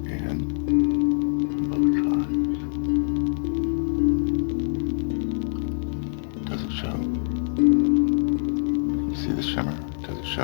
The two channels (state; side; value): silent; right; digital silence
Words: in both sides. Does it show? See the shimmer? Does it